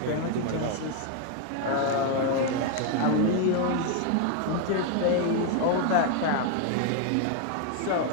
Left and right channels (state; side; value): different; both; correlation 0.00